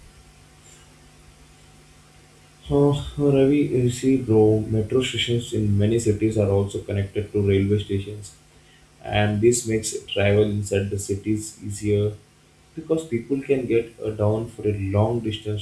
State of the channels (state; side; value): identical; both; correlation 1.00